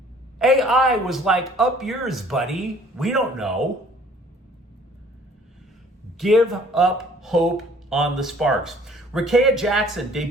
AI was like, up yours, buddy. We don't know. Give up hope on the Sparks. Rakea Jackson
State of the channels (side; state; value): both; normal; correlation 0.55